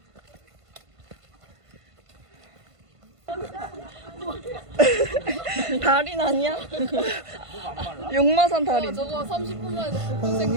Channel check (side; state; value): left; late; 1.5 ms